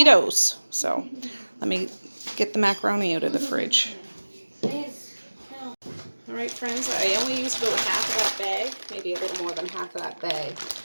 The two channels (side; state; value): both; inverted; correlation -1.00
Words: So let me get the macaroni out of the fridge. Alright friends, I only used about half of that bag, maybe a little more than half of that bag.